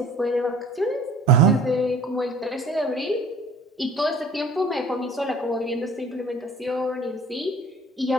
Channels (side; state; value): both; normal; correlation 0.49